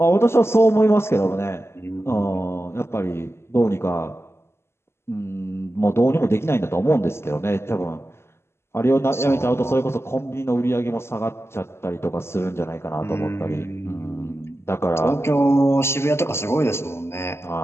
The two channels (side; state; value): right; late; 0.12 ms